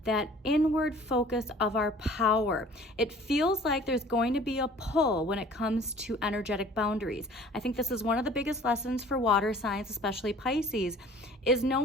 that inward focus of our power. It feels like there's going to be a pull when it comes to energetic boundaries. I think this is one of the biggest lessons for water signs, especially Pisces, is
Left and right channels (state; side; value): normal; both; correlation 0.49